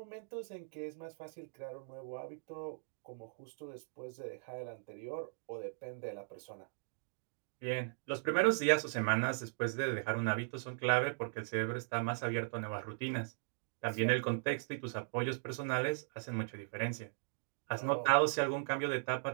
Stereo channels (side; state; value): left; silent; digital silence